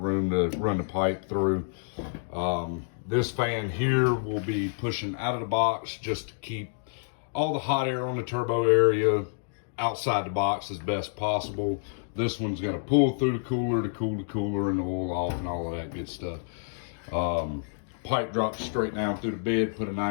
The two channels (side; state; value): right; silent; digital silence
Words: to run the pipe through. This fan here will be pushing out of the box just to keep all the hot air on the turbo area outside the box as best possible. This one's gonna pull through the cooler to cool the cooler and the oil off and all of that good stuff. Pipe drops straight down through the bed, put a